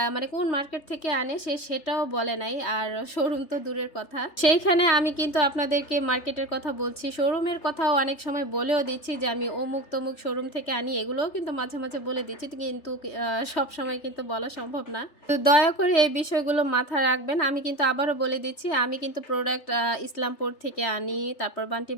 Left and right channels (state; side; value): late; right; 3.3 ms